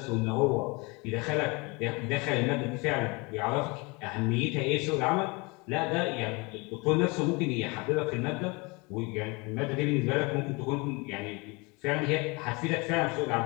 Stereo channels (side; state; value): right; quieter; 27.4 dB